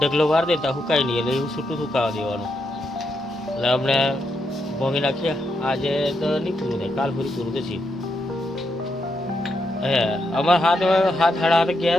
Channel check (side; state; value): both; normal; correlation 0.81